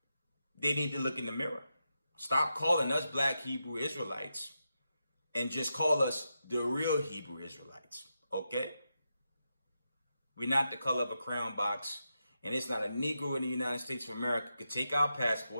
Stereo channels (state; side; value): inverted; both; correlation -0.87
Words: they need to look in the mirror. Stop calling us black Hebrew Israelites and just call us the real Hebrew Israelites, okay? We're not the color of a crown box, and it's not a Negro in the United States of America could take our